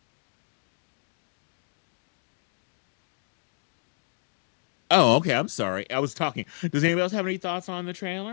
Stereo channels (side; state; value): right; silent; digital silence